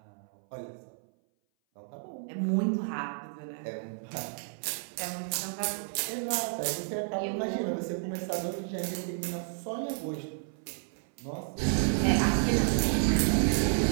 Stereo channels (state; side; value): silent; left; 57 dB below the other